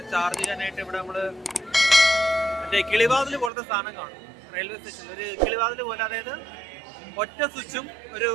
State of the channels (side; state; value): left; drops out; at 3.5 s